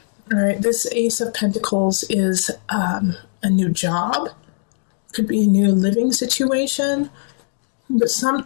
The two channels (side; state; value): right; silent; digital silence